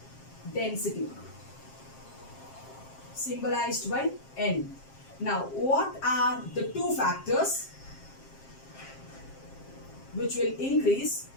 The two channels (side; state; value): right; late; 7.5 ms